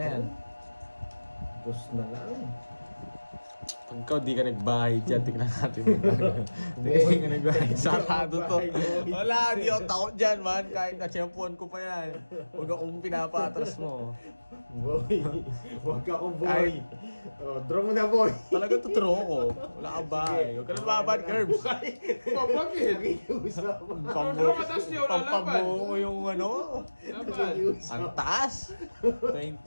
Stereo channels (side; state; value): both; inverted; correlation -1.00